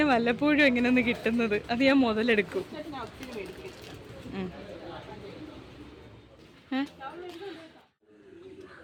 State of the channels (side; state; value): both; identical; correlation 1.00